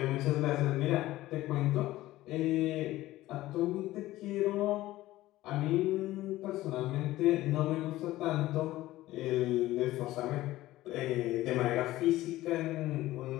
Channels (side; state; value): right; quieter; 16.3 dB